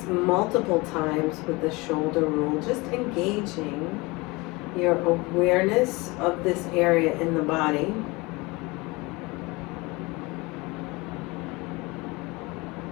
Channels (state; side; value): quieter; right; 24.4 dB